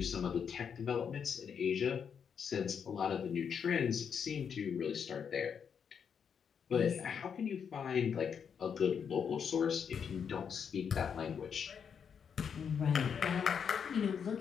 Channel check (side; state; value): right; quieter; 7.1 dB